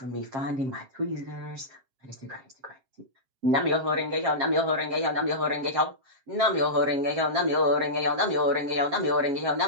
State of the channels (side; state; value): left; late; 7.5 ms